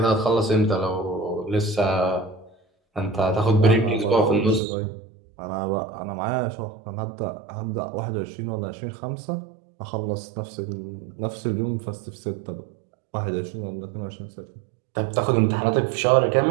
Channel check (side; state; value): left; drops out; at 4.6 s